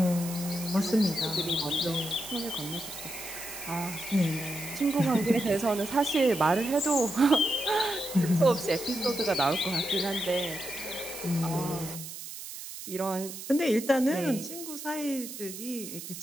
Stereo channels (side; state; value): right; noise; hiss, 10 dB below the sound